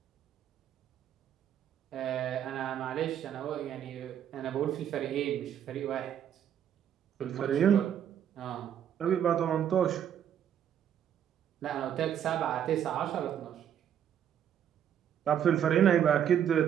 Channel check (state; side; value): quieter; left; 9.5 dB